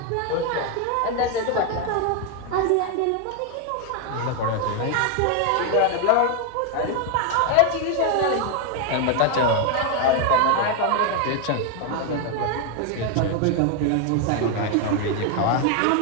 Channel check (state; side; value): different; both; correlation 0.01